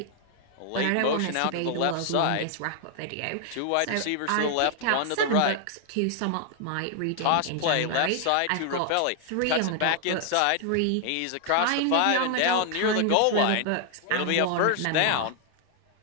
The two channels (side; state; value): both; different; correlation 0.00